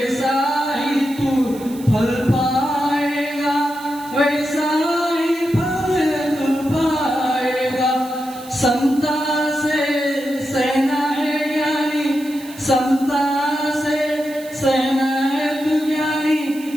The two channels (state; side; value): noise; right; hiss, 19 dB below the sound